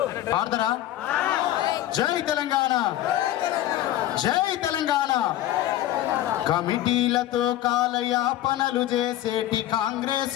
పాడతారా? జై తెలంగాణ, జై తెలంగాణ. కమిటీలతో కాలయాపనలు చేసేటి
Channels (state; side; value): quieter; right; 13.5 dB